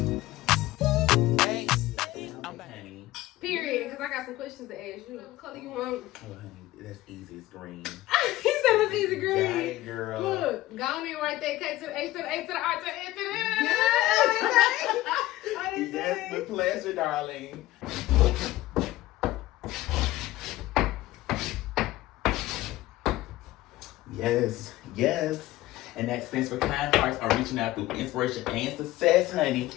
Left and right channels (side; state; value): right; quieter; 16.6 dB